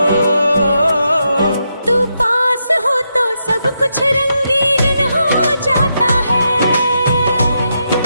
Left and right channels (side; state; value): both; inverted; correlation -0.83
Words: तू पास हो तो सब कुछ रंगीन हो जाता है।